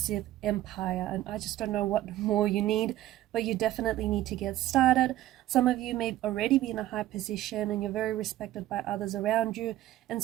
empire. And I just don't know what more you need, but you definitely need to get started. Some of you may already be in a high position and you're very respected by others around you, and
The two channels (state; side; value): quieter; left; 14.4 dB